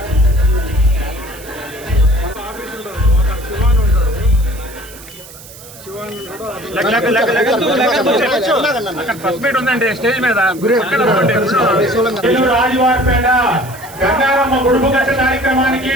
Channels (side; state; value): right; noise; hiss, 18 dB below the sound